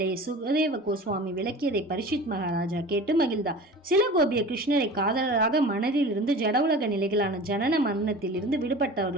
சுகதேவ கோஸ்வாமி விளக்கியதை பரிஷித் மகாராஜா கேட்டு மகிழ்ந்தார். சில கோபியர் கிருஷ்ணரை காதலராக மனதில் இருந்து ஜட உலக நிலைகளான ஜனன மரணத்தில் இருந்து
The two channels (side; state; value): both; normal; correlation 0.38